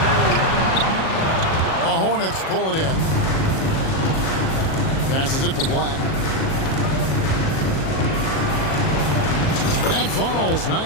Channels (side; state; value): right; late; 37 ms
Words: The Hornets pull it in. Passes it to Black. That falls.